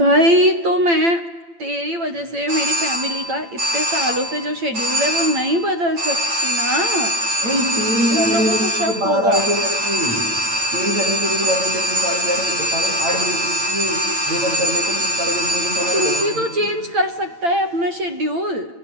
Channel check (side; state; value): left; late; 8.8 ms